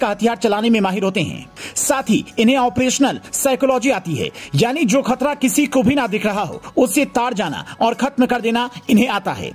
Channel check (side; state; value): both; identical; correlation 1.00